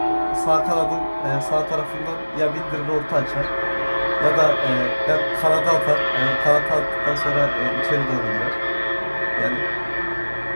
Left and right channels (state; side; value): inverted; both; correlation -1.00